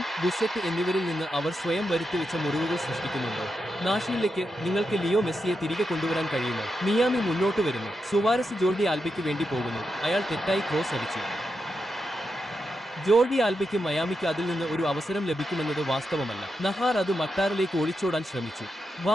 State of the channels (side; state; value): both; normal; correlation 0.86